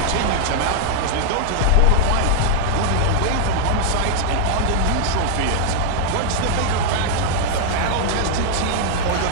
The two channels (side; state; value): both; different; correlation -0.01